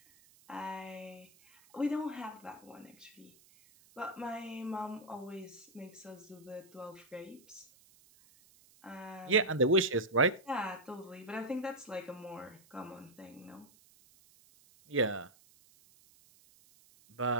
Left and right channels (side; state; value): right; noise; hiss, 27 dB below the sound